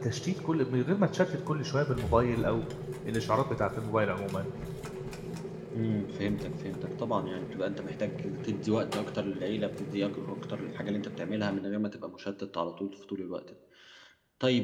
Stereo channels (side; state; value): both; identical; correlation 1.00